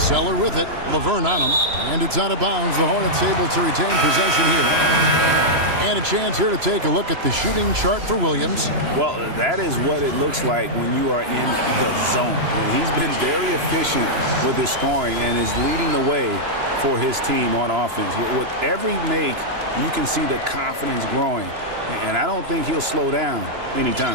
with it. Laverne on him. And it's out of bounds. The Hornets able to retain possession here. And a chance here to take a look at the shooting chart for Williams. Well, that is what it looks like when you are in the zone. And he's been very efficient with his scoring and is leading the way for his team on offense. With every make, you can see the confidence growing. And I don't think he'll slow down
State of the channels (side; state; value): left; late; 2.9 ms